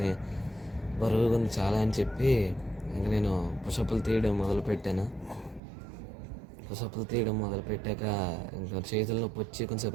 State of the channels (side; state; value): left; drops out; at 5.6 s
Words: బరువుగా ఉంది చాలా అని చెప్పి ఇంక నేను పుషప్పులు తీయడం మొదలుపెట్టాను. పుషప్పులు తీయడం మొదలుపెట్టాక ఇంకా చేతుల నొప్పి వచ్చి కొంచెం